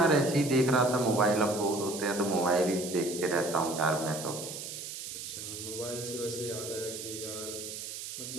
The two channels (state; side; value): noise; right; hiss, 8 dB below the sound